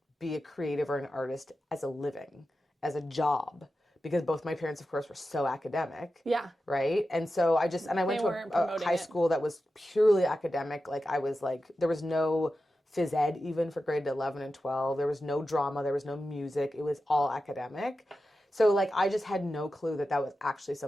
be a creative or an artist as a living, as a job. Because both my parents, of course, were so academic. Yeah. Right? And so I went to a high school that was purely academic. Like I was like, there was no phys ed even for grade 11 and 12. There was no drama. There was no music. It was all academic. So like, I just had no clue that was actually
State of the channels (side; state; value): both; normal; correlation 0.92